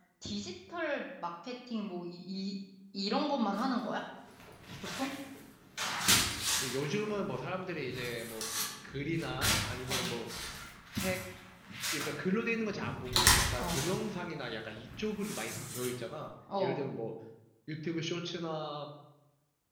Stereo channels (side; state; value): both; identical; correlation 1.00